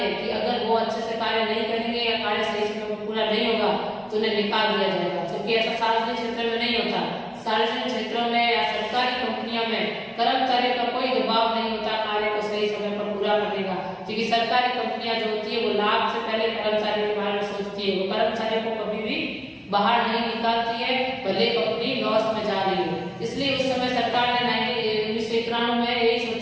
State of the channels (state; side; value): identical; both; correlation 1.00